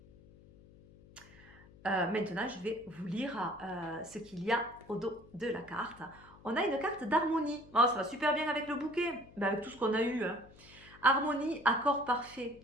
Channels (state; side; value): noise; left; hum, 23 dB below the sound